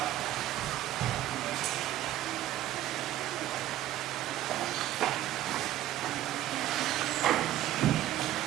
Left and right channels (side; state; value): left; quieter; 13.5 dB